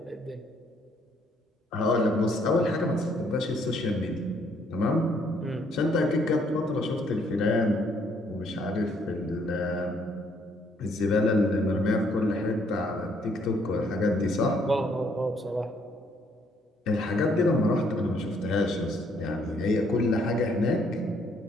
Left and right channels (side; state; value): both; normal; correlation 0.67